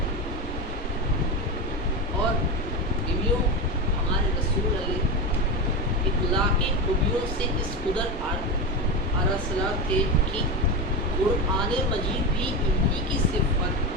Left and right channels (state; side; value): normal; both; correlation 0.17